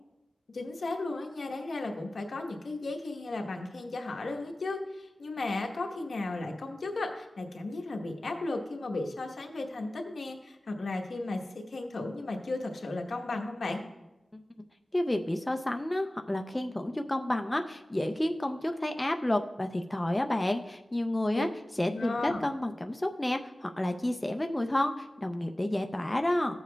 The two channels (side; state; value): both; normal; correlation 0.97